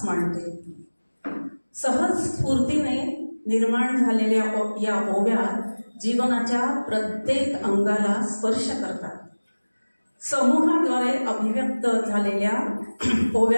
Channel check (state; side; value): inverted; both; correlation -1.00